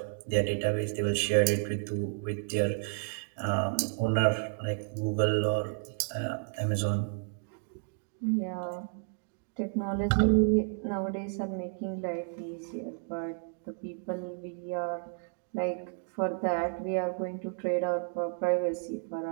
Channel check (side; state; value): left; silent; 57 dB below the other